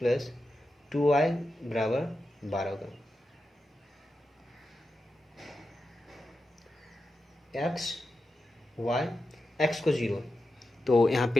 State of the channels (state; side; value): normal; both; correlation 0.90